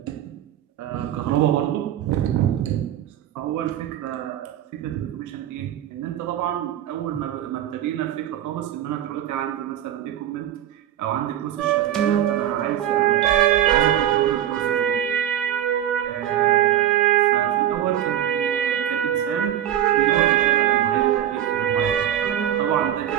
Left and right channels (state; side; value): quieter; left; 11.3 dB